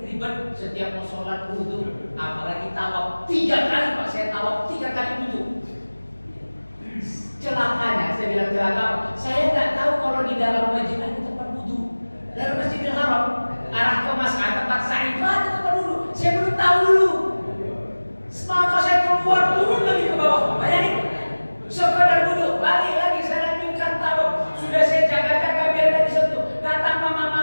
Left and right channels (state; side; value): inverted; both; correlation -1.00